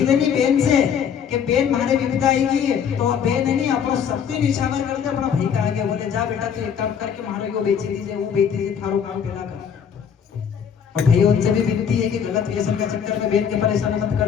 नहीं बेन से कि बेन मारे विपदा आएगी तो बेन है नहीं अपना सबसे निशावर करते अपना भाई का आगे बोले जा बेटा तू एक काम करके मारो यो बेच दीजिए वो बेच दीजिए थारो काम पेला कर। और भाई उनसे भी विनती है कि गलत व्यसन का चक्कर में बेन के परेशान मत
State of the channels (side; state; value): right; quieter; 7.7 dB